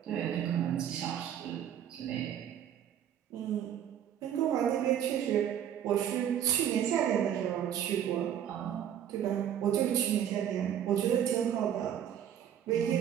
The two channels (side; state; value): left; quieter; 9.8 dB